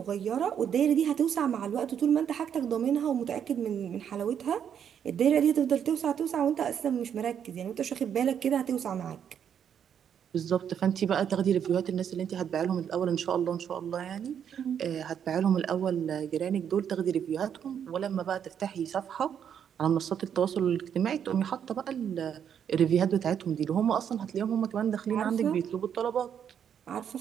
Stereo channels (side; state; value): left; quieter; 8.5 dB